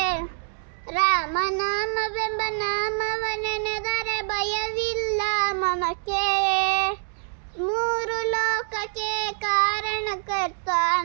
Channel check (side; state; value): left; silent; digital silence